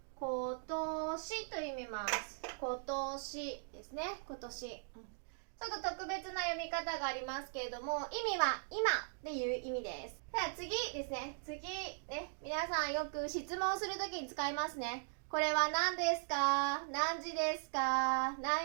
今年と読みます。今年ですね。今年。ちょっと特別な読み方がありますけれども、意味は今っていう意味です。では次ですね。次ね、皆さんよく質問するときに使いますね。これは何ですか？何時ですか？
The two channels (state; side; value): silent; left; digital silence